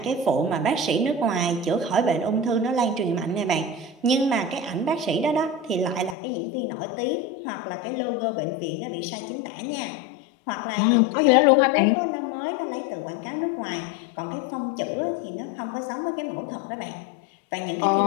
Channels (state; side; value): drops out; right; at 6.2 s